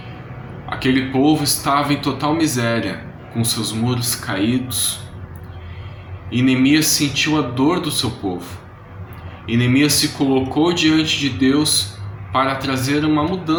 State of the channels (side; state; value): both; identical; correlation 1.00